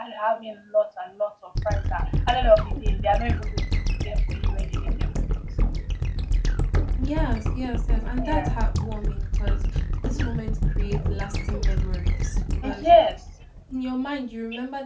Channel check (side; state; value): both; identical; correlation 1.00